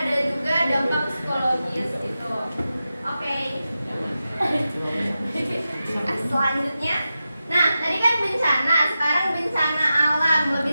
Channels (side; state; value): both; inverted; correlation -0.92